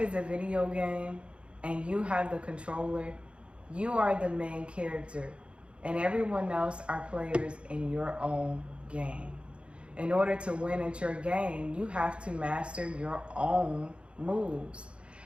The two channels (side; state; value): left; late; 0.058 ms